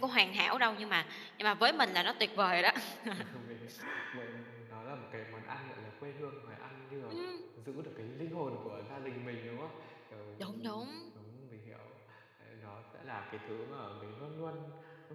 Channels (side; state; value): both; identical; correlation 1.00